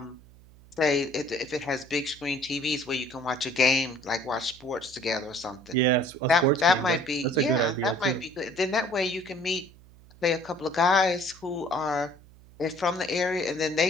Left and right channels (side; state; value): right; noise; hum, 24 dB below the sound